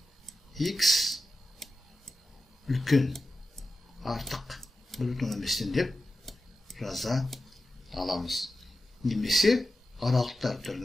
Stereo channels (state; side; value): normal; both; correlation 0.91